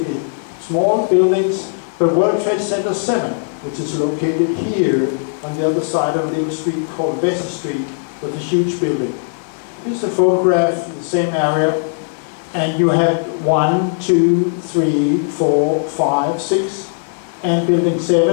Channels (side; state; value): right; silent; digital silence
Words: small buildings, but World Trade Center 7, which is located here on the other side of a little street called Vesey Street, was a huge building. Here's a photograph in the same area, and you had 1, 2, 3, 4, 5, 6, and building